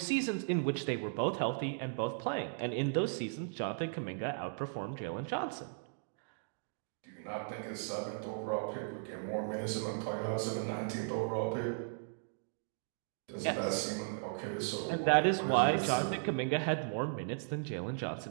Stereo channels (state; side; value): silent; left; digital silence